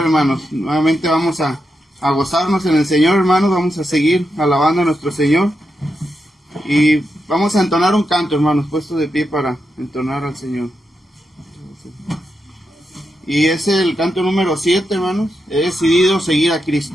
hermanos. Nuevamente vamos a gozarnos en el Señor, hermanos. Vamos a seguir alabando a nuestro Señor. Y vamos a entonar un canto, hermanos, puestos de pie para entonar al Señor. Y es el canto número 7, hermanos. He decidido seguir a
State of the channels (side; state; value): both; normal; correlation 0.86